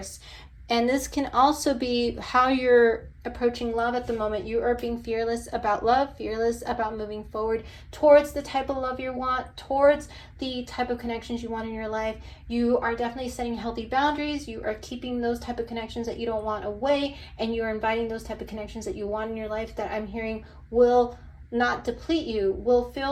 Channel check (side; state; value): both; identical; correlation 1.00